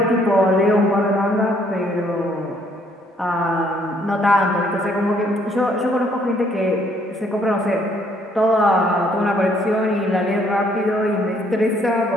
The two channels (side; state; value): both; normal; correlation 0.66